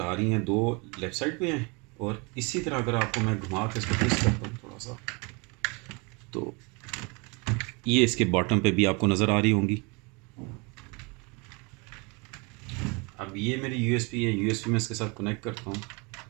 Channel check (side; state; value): left; quieter; 29.8 dB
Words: आ रही हैं, दो लेफ़्ट साइड पे हैं। और इसी तरह अगर आपको मैं घुमा के इसको ट्विस्ट करता हूँ थोड़ा सा, तो ये इसके बॉटम पे भी आपको नज़र आ रही होंगी। अब ये मेरी यूएसबी है, यूएसबी में इसके साथ कनेक्ट करता हूँ।